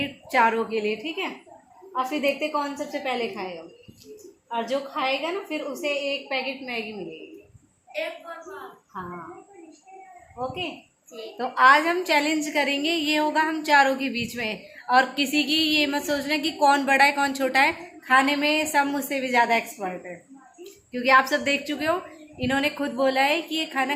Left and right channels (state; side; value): identical; both; correlation 1.00